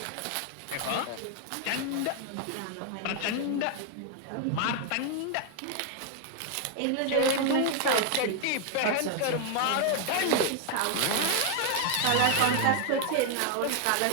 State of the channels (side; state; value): both; different; correlation 0.01